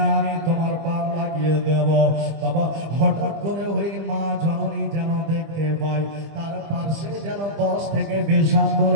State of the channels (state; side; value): late; left; 25 ms